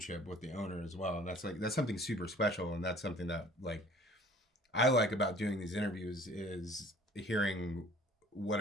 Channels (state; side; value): normal; both; correlation 0.51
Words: with the owner as well, and that's something super special, and that's something that I like about doing these interviews is hearing what